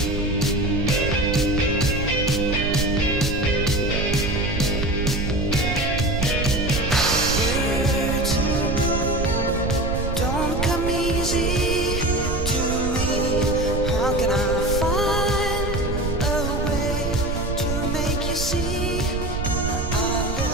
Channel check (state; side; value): noise; right; rumble, 3 dB below the sound